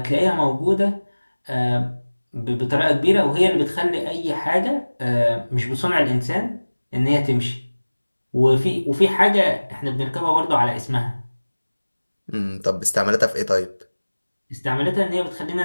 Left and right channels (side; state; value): both; inverted; correlation -1.00